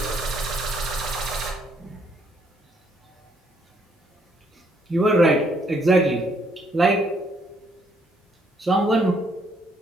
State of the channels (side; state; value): both; normal; correlation 0.69